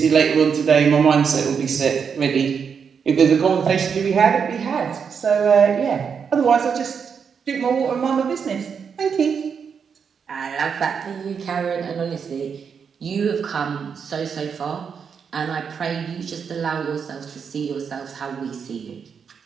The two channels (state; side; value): quieter; left; 6.6 dB